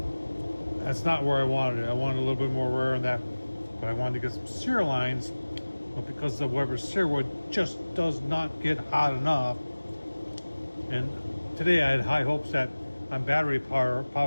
That's not where I wanted it. I wanted a little bit more rare than that, but I wanted to get some sear lines. But because the Weber Searwood just does not get hot enough, and today I had high hopes that on battery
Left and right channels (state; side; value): inverted; both; correlation -1.00